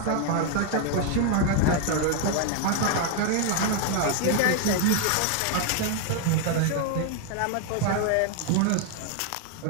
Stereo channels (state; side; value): different; both; correlation 0.00